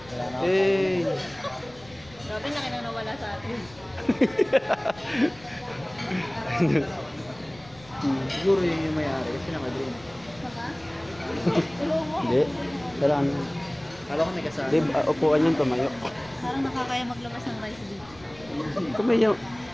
Hey. Grabe na kinang nawala sa atin. Siguro yun yung may-ari kasi naka-green. Hindi. Dalaan. Kala ko may kasama. Gabe, upuan yung tumayo. Parang nakakaya maglabas ng rice dito.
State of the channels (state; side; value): noise; left; rumble, 23 dB below the sound